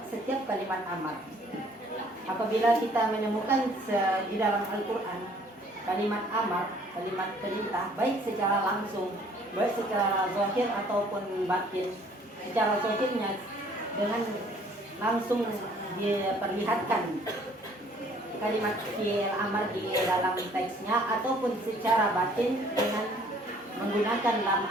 setiap kalimat amar. Apabila kita menemukan di dalam Al-Qur'an kalimat amar, kalimat perintah baik secara langsung, baik secara zahir ataupun batin. Secara zahirnya dengan langsung diperlihatkan kalimat fi'il amar di dalam teksnya ataupun secara batin dengan menggunakan lam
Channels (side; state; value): both; normal; correlation 0.58